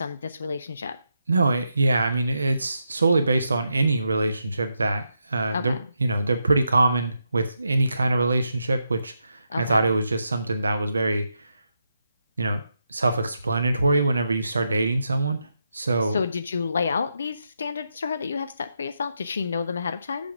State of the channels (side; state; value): both; inverted; correlation -0.83